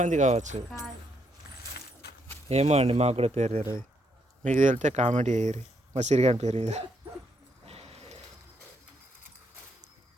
కావచ్చు. ఏమో అండి, మాకు కూడా పేరు తెలియదు. మీకు తెలితే కామెంట్ చేయరు. మా సిరిగాని పేరు ఇది.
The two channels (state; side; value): normal; both; correlation 0.76